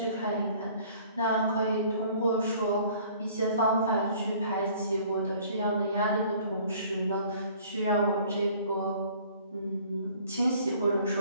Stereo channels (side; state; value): both; inverted; correlation -0.54